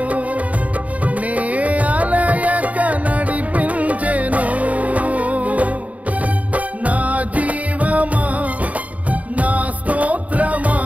నే అలయక నడిపించెను నా జీవమా నా స్తోత్రమా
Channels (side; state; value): left; late; 0.070 ms